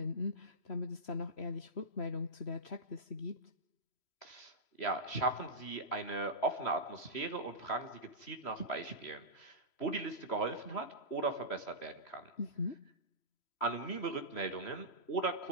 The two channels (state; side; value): late; right; 3.1 ms